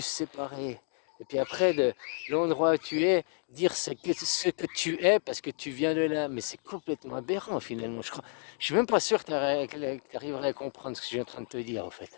séparer. Et puis après, de l'endroit où tu es, dire ce que tu es parce que tu viens de là. Mais c'est complètement aberrant finalement. Je suis même pas sûr que tu arriverais à comprendre ce que je suis en train de te dire en fait.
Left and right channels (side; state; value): right; silent; 57 dB below the other